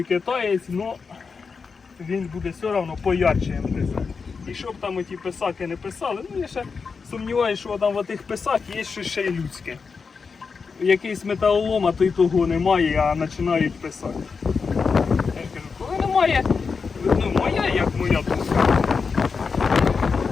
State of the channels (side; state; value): right; quieter; 5.2 dB